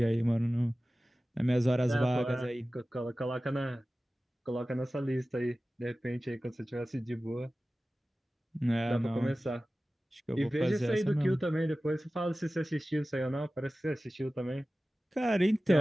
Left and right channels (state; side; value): normal; both; correlation 0.96